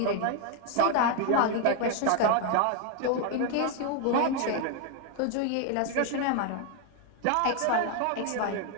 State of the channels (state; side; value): different; both; correlation 0.01